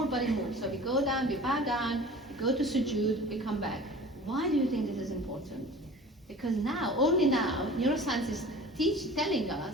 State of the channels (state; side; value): normal; both; correlation 0.41